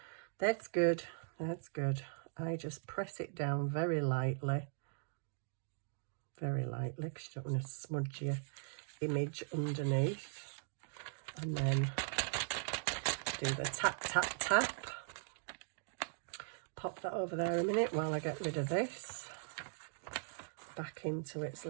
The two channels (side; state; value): left; silent; digital silence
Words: That's good. That's good. I just press it down very lightly. Very lightly, because you don't want to smudge your image underneath. And then do the tap, tap, tap. Pop that over there a minute while I get rid of this. Back into its